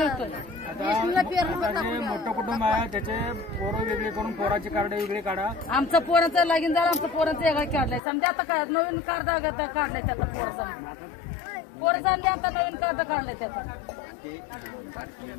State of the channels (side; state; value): right; drops out; at 8.0 s